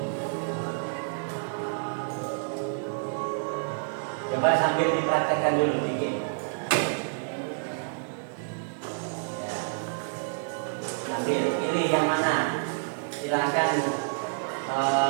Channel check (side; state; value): left; silent; 59 dB below the other